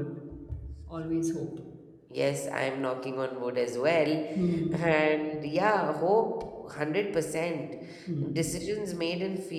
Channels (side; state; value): both; identical; correlation 1.00